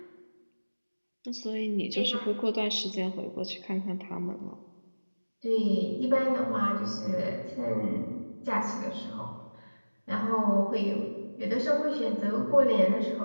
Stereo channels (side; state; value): both; inverted; correlation -1.00